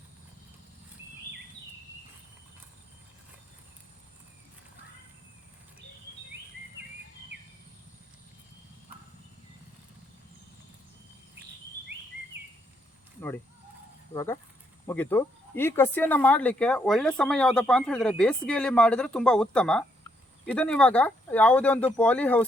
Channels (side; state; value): both; normal; correlation 0.74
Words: ನೋಡಿ, ಇವಾಗ ಮುಗೀತು. ಈ ಕಸಿಯನ್ನು ಮಾಡಲಿಕ್ಕೆ ಒಳ್ಳೆ ಸಮಯ ಯಾವುದಪ್ಪ ಅಂತ ಹೇಳಿದರೆ ಬೇಸಿಗೆಯಲ್ಲಿ ಮಾಡಿದರೆ ತುಂಬ ಉತ್ತಮ. ಇದನ್ನು ಇವಾಗ ಯಾವುದೇ ಒಂದು ಪಾಲಿ